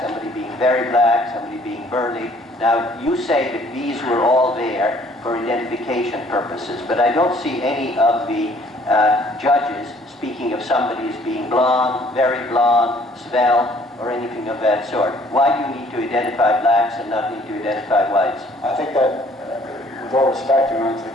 somebody being very black, somebody being burly. Now, you say that these were all there for identification purposes, but I don't see any of the judges speaking of somebody as being blonde, very blonde, svelte, or anything of that sort. Why do you need to identify blacks and not need to identify whites? I think that, with all respect, Your Honor, to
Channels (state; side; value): normal; both; correlation 0.59